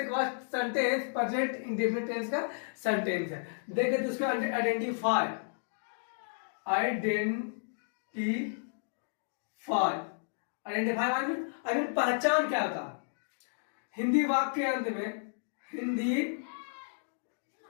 सेंटेंस प्रेजेंट इंडेफिनिट टेंस का सेंटेंस है। देखिए तो उसको आइडेंटिफाई पहचान क्या था? हिंदी वाक्य के अंत में, हिंदी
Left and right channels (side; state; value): right; silent; digital silence